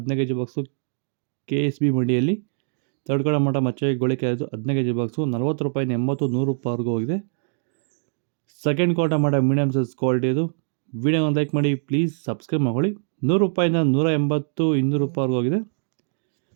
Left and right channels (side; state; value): left; silent; 62 dB below the other